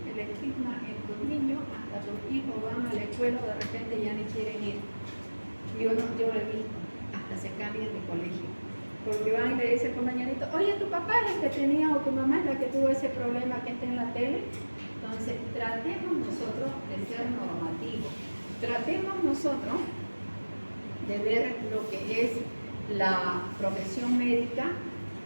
El estigma en tus niños, hasta tus hijos van a la escuela, de repente ya ni quieren ir. Yo lo he visto, hasta se cambian de colegio. Porque van y le dice el compañerito, oye, tu papá es el que tenía o tu mamá es la que tuvo ese problema que está en la tele. Entonces, tratemos nosotros de ser normativos. Tratemos nosotros de ver lo que es la profesión médica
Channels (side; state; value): both; inverted; correlation -1.00